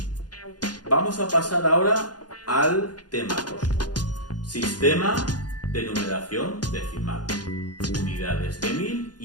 Vamos a pasar ahora al tema 2. Sistema de numeración decimal. Unidades de 1000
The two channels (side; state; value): right; late; 0.69 ms